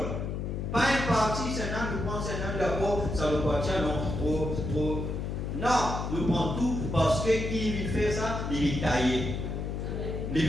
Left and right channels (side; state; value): left; noise; hum, 3 dB below the sound